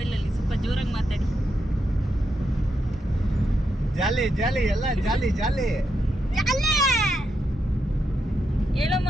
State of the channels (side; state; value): both; normal; correlation 0.83